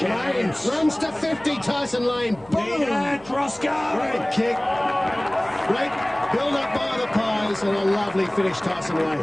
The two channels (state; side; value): noise; left; hum, 25 dB below the sound